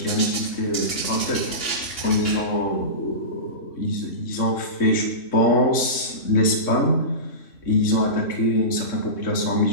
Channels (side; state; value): right; late; 3.6 ms